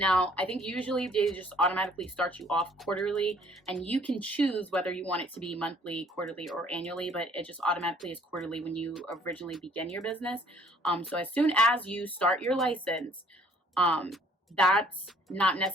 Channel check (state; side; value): normal; both; correlation 0.59